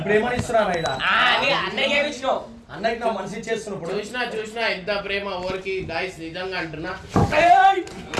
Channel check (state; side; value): identical; both; correlation 1.00